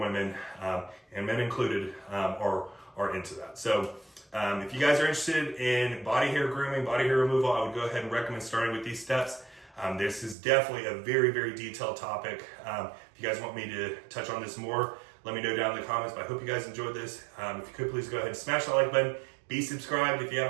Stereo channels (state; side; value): drops out; left; at 10.4 s